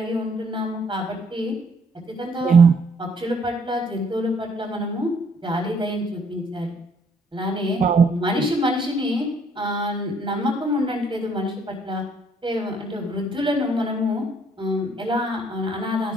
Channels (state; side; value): normal; both; correlation 0.65